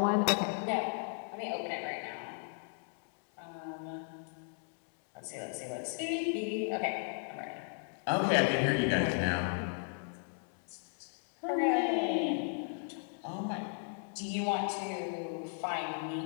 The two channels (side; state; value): right; silent; 54 dB below the other